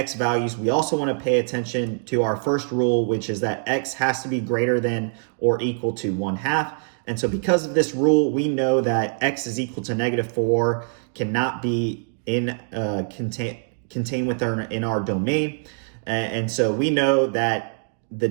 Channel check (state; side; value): silent; left; digital silence